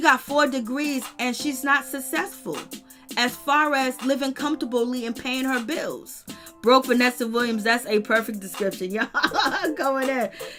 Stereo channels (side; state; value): both; identical; correlation 1.00